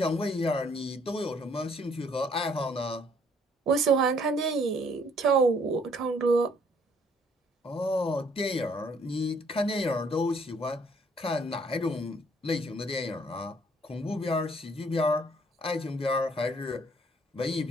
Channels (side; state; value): both; normal; correlation 0.63